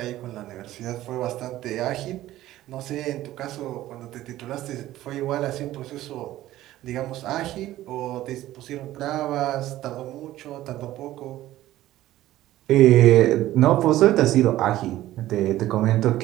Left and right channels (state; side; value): quieter; left; 14.9 dB